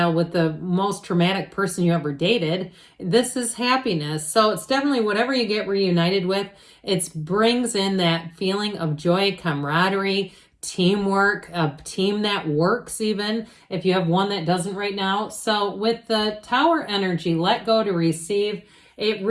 with the most traumatic person you ever dated. This is happiness. So it's definitely whatever you get reunited with, it brings in that feeling of joy, camaraderie, teamwork, a team that works even, if you have one that doesn't right now. So with the Tower energy, let go to receive, it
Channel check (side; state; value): both; identical; correlation 1.00